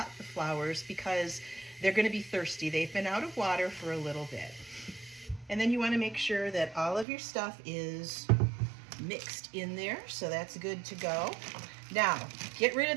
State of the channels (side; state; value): left; drops out; at 7.1 s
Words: the flowers, because they're going to be thirsty. They've been out of water for a little bit. And then you want to make sure that all of your stuff is mixed in there, so that's good to go. Now, get rid